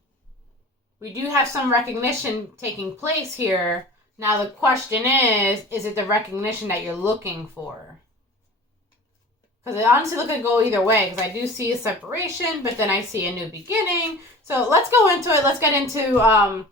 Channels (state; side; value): normal; both; correlation 0.39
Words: we do have some recognition taking place here. Now the question is it the recognition that you're looking for? Because it honestly looks like go either way, because I do see a separation, but then I see a new beginning. So let's go into it. Let's get into